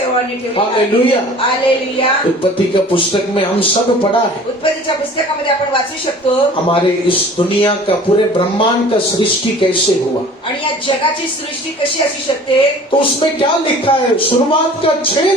ठेवला. हालेलुया। हालेलुया. उत्पत्ति का पुस्तक में हम सब पढ़ा है। उत्पत्तीच्या पुस्तकामध्ये आपण वाचू शकतो. हमारे इस दुनिया का, पूरे ब्रह्मांड का सृष्टि कैसे हुआ, आणि या जगाची सृष्टी कशी असू शकते. तो उसमें क्या लिखा है? शुरुआत का 6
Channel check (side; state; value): both; normal; correlation 0.46